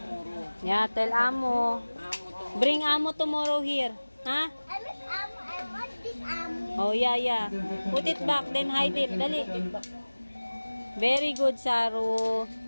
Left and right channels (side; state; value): both; inverted; correlation -1.00